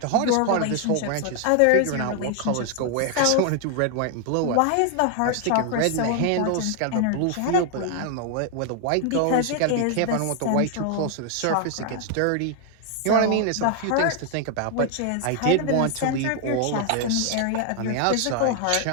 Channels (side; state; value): both; different; correlation 0.00